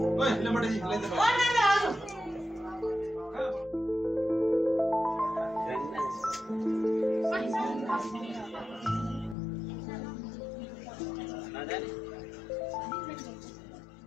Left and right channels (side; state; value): right; drops out; at 9.3 s